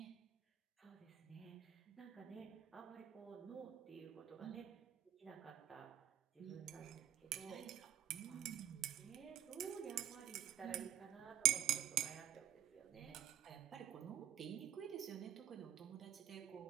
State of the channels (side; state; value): left; quieter; 10.8 dB